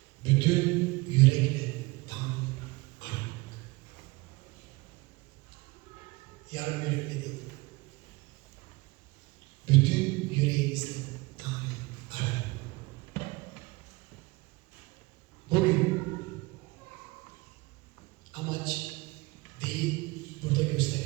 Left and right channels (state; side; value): quieter; left; 23.3 dB